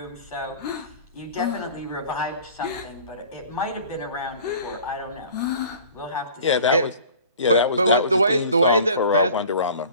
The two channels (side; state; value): both; inverted; correlation -0.45